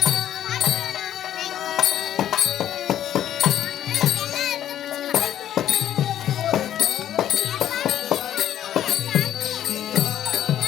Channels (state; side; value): quieter; right; 11.2 dB